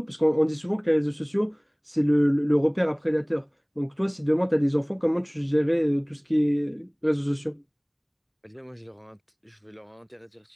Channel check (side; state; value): both; identical; correlation 1.00